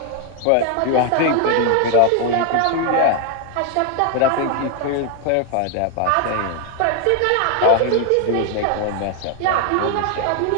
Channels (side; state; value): both; different; correlation 0.01